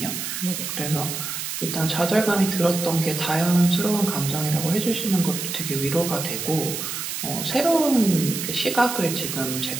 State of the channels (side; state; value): right; noise; hiss, 5 dB below the sound